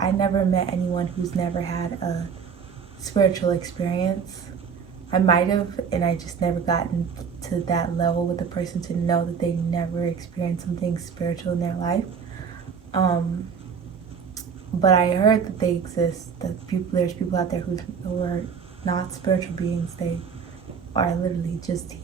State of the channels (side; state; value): left; quieter; 6.4 dB